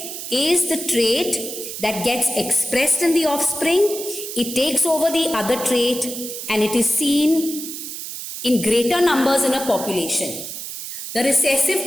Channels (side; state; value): right; noise; hiss, 8 dB below the sound